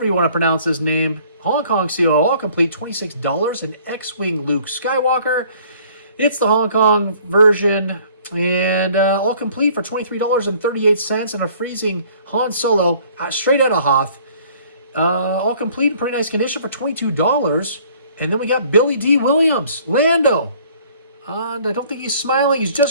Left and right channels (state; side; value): inverted; both; correlation -0.56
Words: you want to pronounce his name. Hong Kong COO, all complete, $26. An X-Wing Luke Skywalker. It's the Hong Kong version. And all complete for $23.38. And a freezing Han Solo, straight out of Hoth. All complete in pretty nice condition for $22. And then we got Billy D. Williams, Lando. And I don't think he's smiling. He's